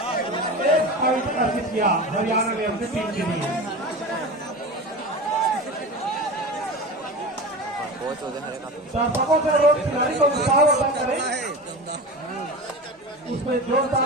एक पॉइंट अर्जित किया हरियाणा ने अपनी टीम के लिए। दर्शकों से रोज खिलाड़ी को उत्साह वर्धन करें, उसमें जोर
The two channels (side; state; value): both; normal; correlation 0.30